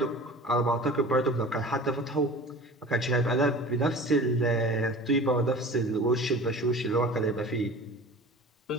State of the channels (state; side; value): normal; both; correlation 0.40